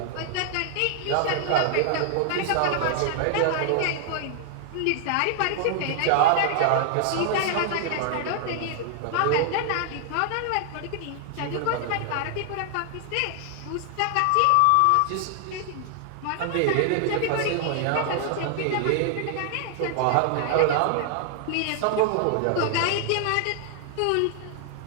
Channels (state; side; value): different; both; correlation 0.00